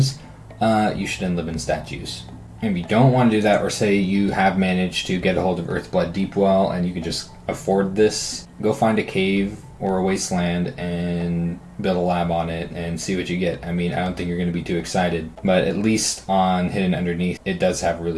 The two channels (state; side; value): identical; both; correlation 1.00